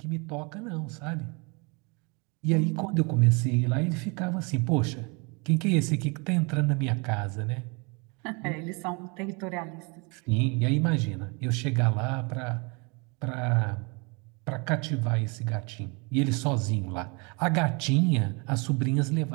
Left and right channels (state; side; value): quieter; left; 30.9 dB